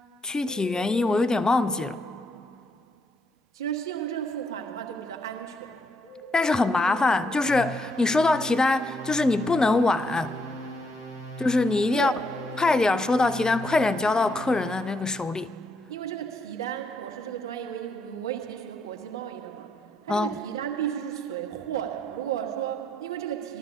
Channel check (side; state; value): both; normal; correlation 0.75